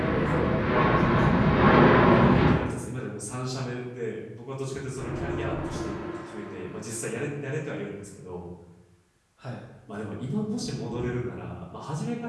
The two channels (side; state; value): both; identical; correlation 1.00